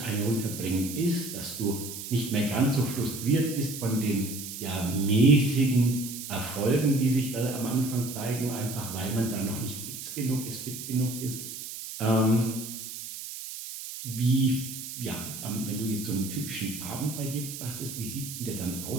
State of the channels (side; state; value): right; noise; hiss, 9 dB below the sound